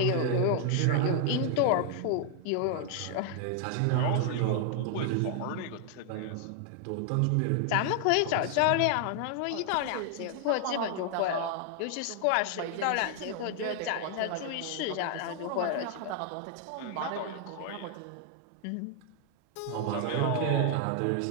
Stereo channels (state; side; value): different; both; correlation 0.00